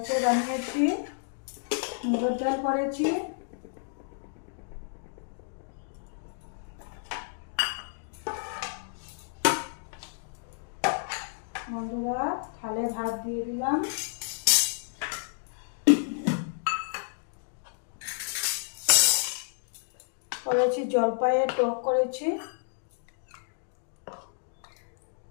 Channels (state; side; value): silent; right; digital silence